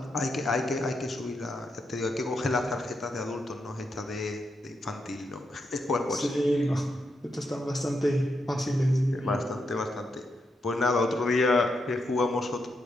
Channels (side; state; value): both; normal; correlation 0.83